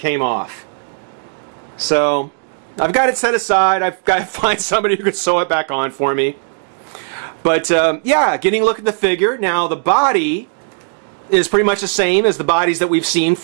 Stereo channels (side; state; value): left; silent; 68 dB below the other